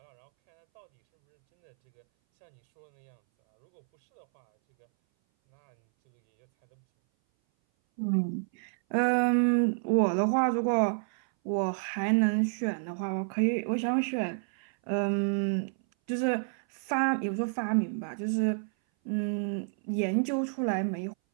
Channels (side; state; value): left; silent; 58 dB below the other